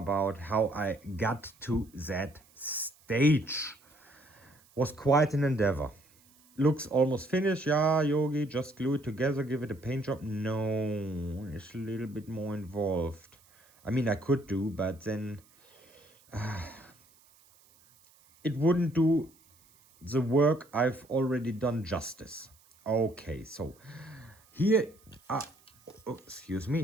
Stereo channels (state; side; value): noise; right; hiss, 29 dB below the sound